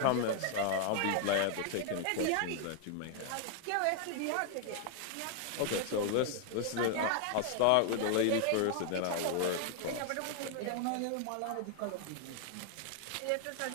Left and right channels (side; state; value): both; different; correlation 0.00